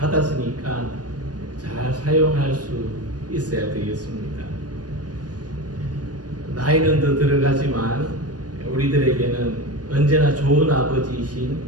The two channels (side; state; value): left; late; 0.69 ms